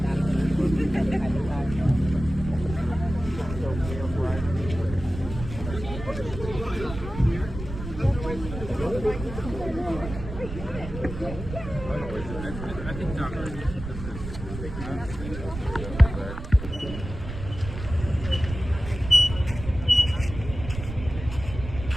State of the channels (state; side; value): noise; right; rumble, 9 dB below the sound